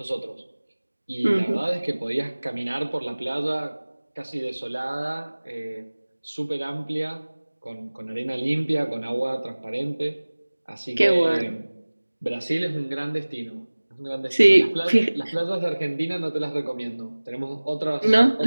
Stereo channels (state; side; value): inverted; both; correlation -1.00